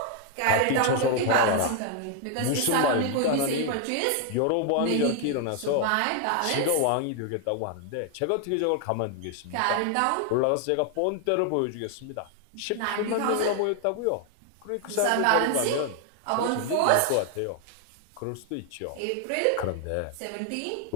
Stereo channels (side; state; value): both; different; correlation 0.00